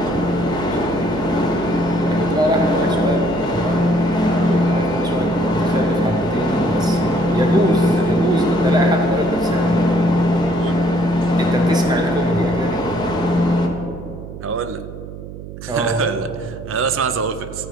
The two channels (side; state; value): right; noise; hum, 12 dB below the sound